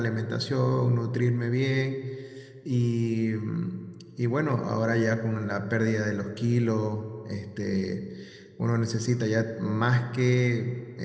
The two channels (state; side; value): identical; both; correlation 1.00